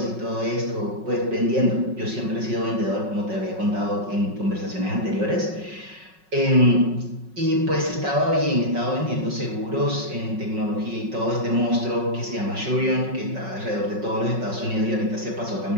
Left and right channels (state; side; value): late; left; 5.4 ms